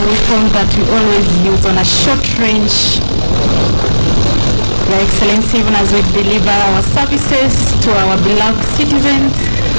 weapon that we always use on a short range. Your Excellency, even as we deliver our services to our beloved citizens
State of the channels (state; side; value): inverted; both; correlation -1.00